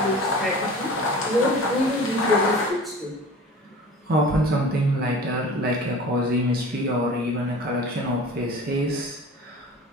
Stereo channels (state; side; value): normal; both; correlation 0.40